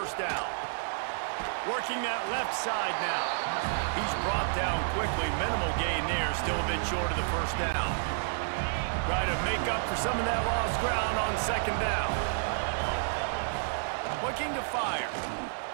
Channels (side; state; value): left; silent; 58 dB below the other